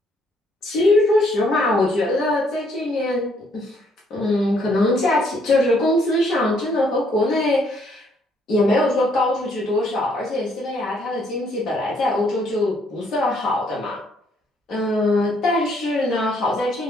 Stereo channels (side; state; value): both; normal; correlation 0.68